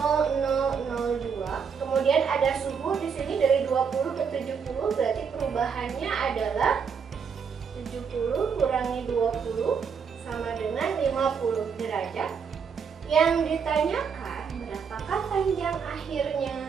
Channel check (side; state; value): left; quieter; 6.4 dB